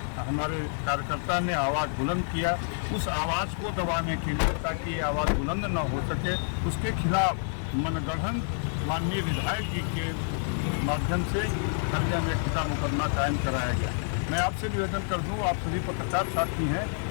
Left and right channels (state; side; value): silent; right; 59 dB below the other